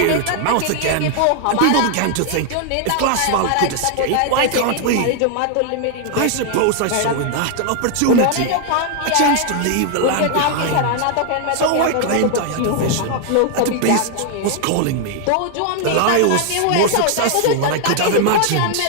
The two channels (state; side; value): different; both; correlation 0.00